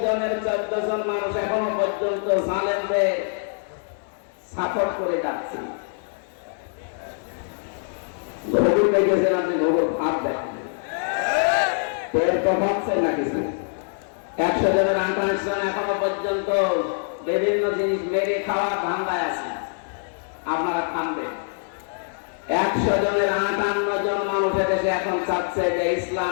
জনের 14 জন মানুষ এখনো পর্যন্ত জালেমদের সাপোর্ট করে যাচ্ছে। ভোগুর দেখেছেন আপনি, ভোগুর ভাব দেখেন, পেট তো ভাবছেন না কিছু। 100 জনের 28 জন এখনো পর্যন্ত বিভিন্ন জিনিস মেরে খাওয়ার ধান্দায় আছে। আপনারা খানবেন। 100 জনের 58 জন মানুষ দেশে এখন চাচ্ছে যে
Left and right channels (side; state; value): right; silent; 62 dB below the other